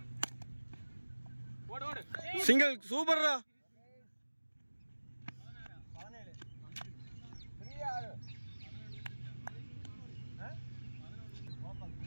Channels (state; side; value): inverted; both; correlation -1.00